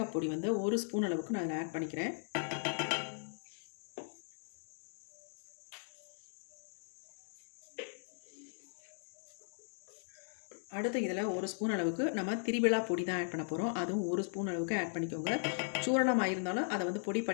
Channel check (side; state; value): right; silent; digital silence